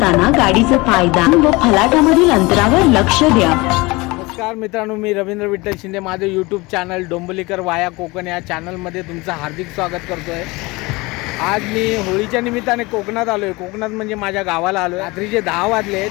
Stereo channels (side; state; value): right; quieter; 23.4 dB